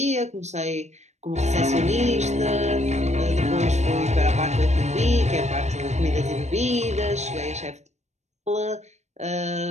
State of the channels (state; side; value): late; left; 0.33 ms